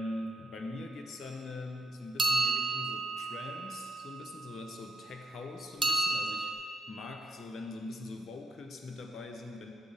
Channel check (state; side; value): normal; both; correlation 0.74